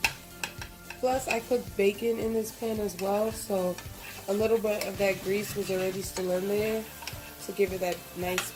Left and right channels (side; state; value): both; identical; correlation 1.00